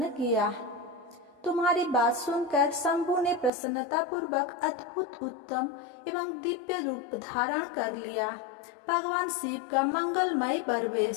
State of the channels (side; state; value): right; drops out; at 3.5 s